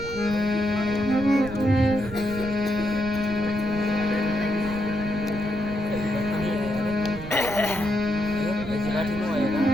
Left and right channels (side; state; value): right; noise; rumble, 11 dB below the sound